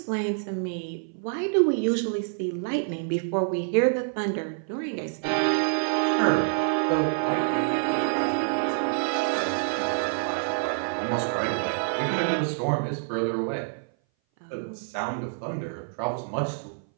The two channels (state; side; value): silent; left; 58 dB below the other